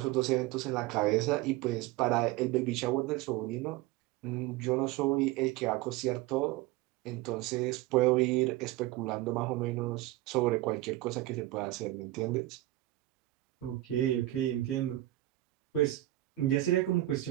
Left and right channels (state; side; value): quieter; left; 16.8 dB